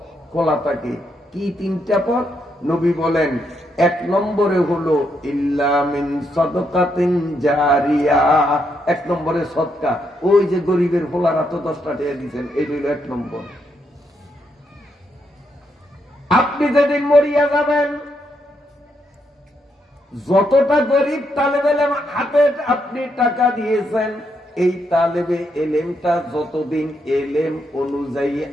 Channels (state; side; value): normal; both; correlation 0.78